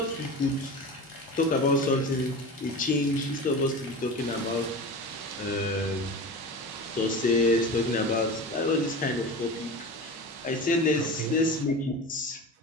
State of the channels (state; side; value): normal; both; correlation 0.30